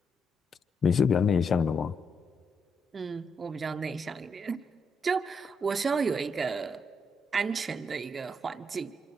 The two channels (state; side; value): normal; both; correlation 0.80